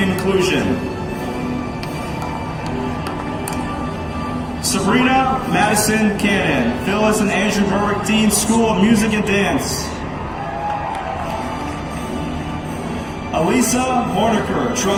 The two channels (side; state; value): both; identical; correlation 1.00